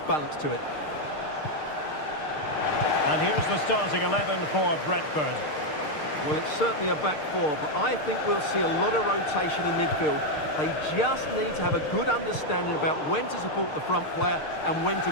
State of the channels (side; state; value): right; late; 6.6 ms